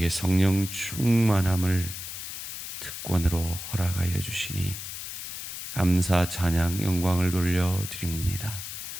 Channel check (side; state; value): left; noise; hiss, 8 dB below the sound